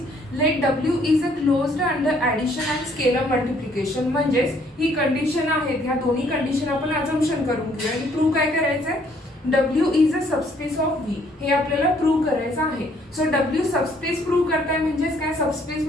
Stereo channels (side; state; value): both; normal; correlation 0.64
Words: let W is a closed under addition and scalar multiplication. म्हणजेच ही कंडिशन आहेत, ह्या दोन्ही कंडिशन आपण अजम्पशन करून घेऊया आणि प्रूव्ह काय करायचं आहे, W is a subspace of V. हे आपल्याला प्रूव्ह करायचं आहे. सो डब्ल्यू सबस्पेस प्रूव्ह करताय म्हणजेच काय, सबस्पेस